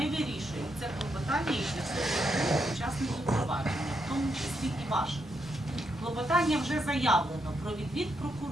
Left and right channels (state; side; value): normal; both; correlation 0.80